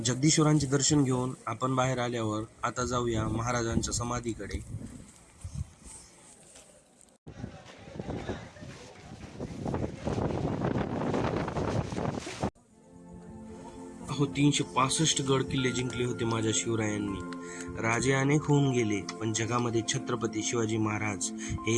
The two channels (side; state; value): both; identical; correlation 1.00